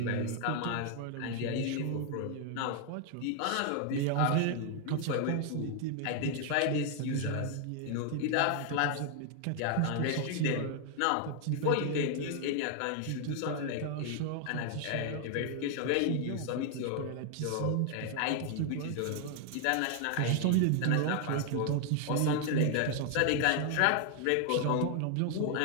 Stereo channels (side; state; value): both; different; correlation 0.00